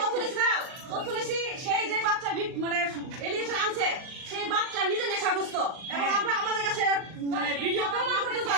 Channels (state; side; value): late; left; 39 ms